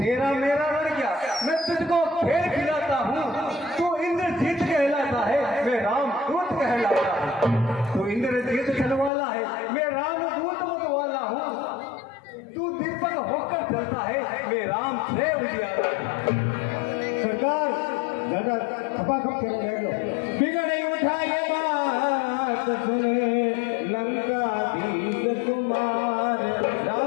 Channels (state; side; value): drops out; right; at 9.1 s